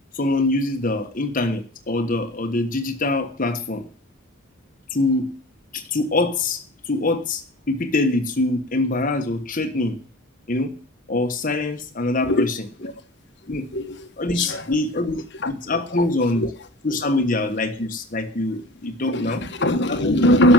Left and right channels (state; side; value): normal; both; correlation 0.38